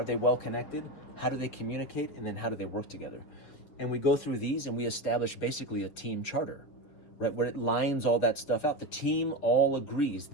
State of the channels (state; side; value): late; right; 7.3 ms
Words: they well connected? How do they communicate? And then how do they work together? And we go through these and we establish basically a team charter, right? Where it lines all that stuff out. The team all agrees